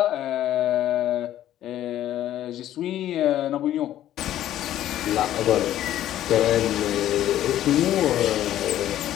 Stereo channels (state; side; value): quieter; right; 12.4 dB